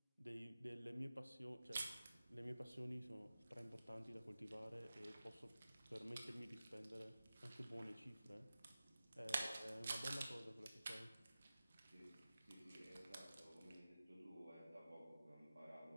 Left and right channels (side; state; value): both; inverted; correlation -0.95